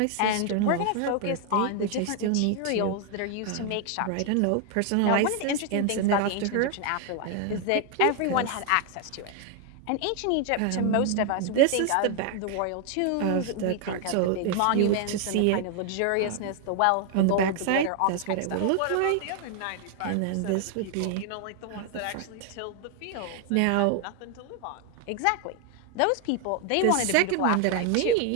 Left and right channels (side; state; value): both; different; correlation 0.00